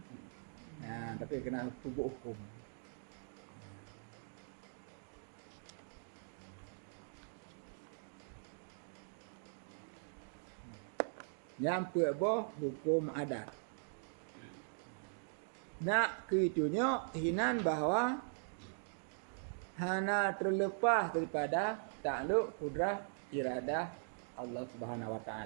Tapi kena hukum. Yang pertama hukum adat. Nak keitunya hinan bahawa hana terlepas daripada takluk kudrah iradah Allah Subhanahu wa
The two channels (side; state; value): left; silent; digital silence